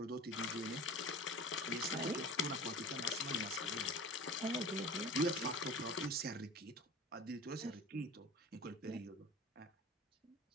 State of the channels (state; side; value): normal; both; correlation 0.37